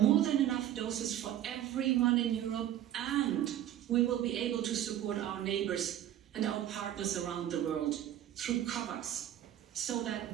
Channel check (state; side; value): quieter; left; 11.8 dB